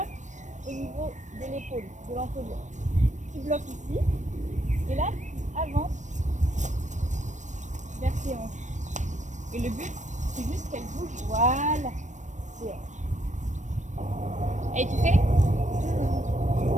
au niveau de l'épaule, de l'encolure. Tu bloques ici, et là, tu avances vers tes hanches. Et le but, c'est juste qu'elle bouge, voilà, tes hanches. Et tu fais?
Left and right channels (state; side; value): late; left; 0.35 ms